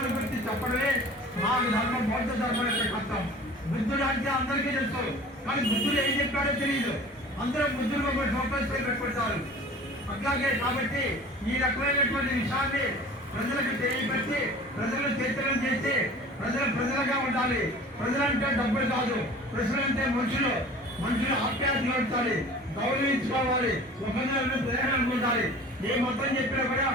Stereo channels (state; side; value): normal; both; correlation 0.43